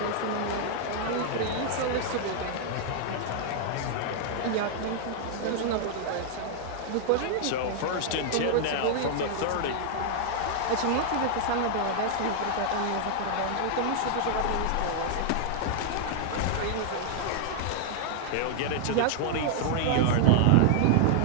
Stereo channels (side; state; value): both; different; correlation 0.00